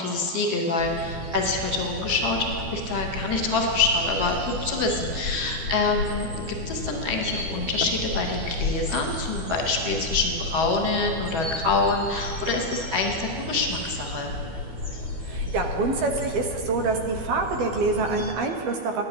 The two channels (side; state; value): left; late; 12 ms